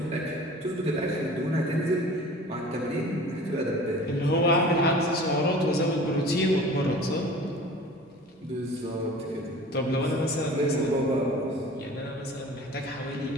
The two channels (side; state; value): both; normal; correlation 0.43